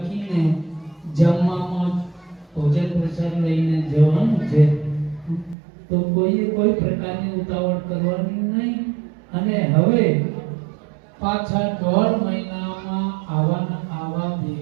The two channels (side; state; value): left; drops out; at 5.6 s